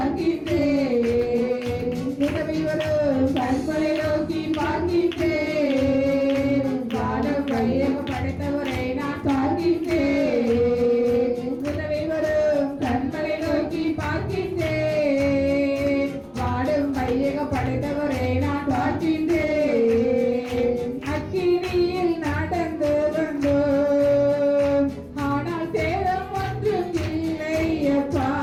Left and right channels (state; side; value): identical; both; correlation 1.00